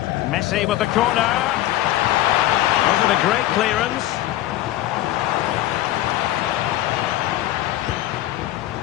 Messi with the corner. Wasn't a great clearance.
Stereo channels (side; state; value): right; quieter; 14.5 dB